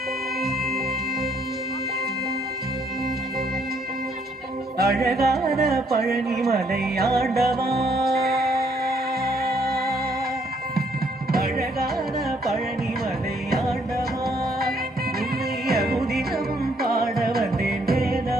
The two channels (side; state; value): both; normal; correlation 0.68